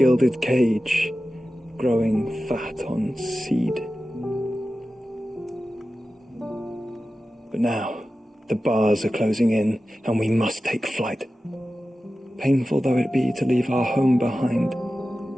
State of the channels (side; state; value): both; normal; correlation 0.94